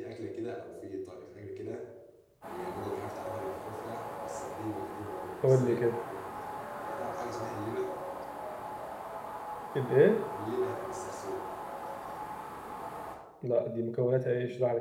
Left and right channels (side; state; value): both; identical; correlation 1.00